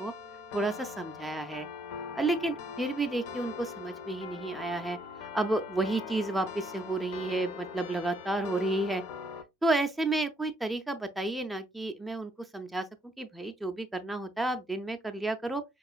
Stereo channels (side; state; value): both; normal; correlation 0.71